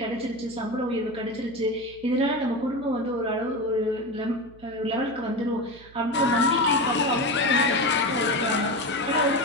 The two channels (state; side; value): noise; right; hum, 23 dB below the sound